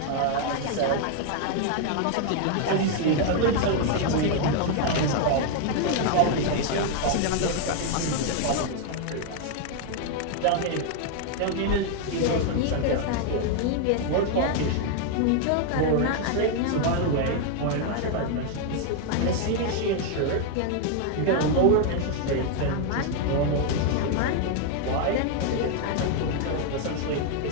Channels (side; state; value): both; different; correlation 0.00